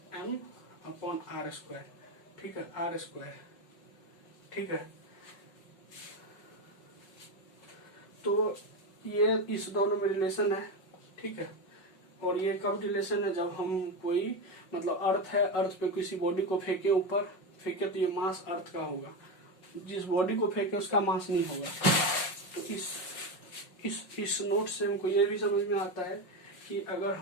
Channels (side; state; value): right; late; 5.5 ms